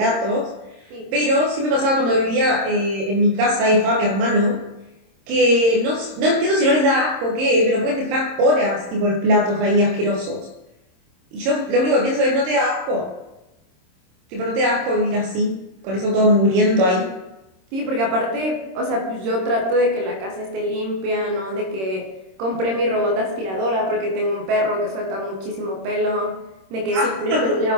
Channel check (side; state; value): left; late; 26 ms